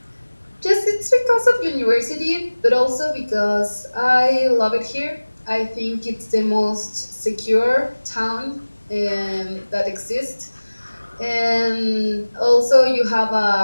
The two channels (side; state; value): both; inverted; correlation -1.00